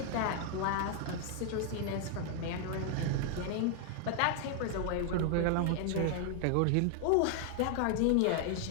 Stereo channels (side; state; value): both; different; correlation 0.00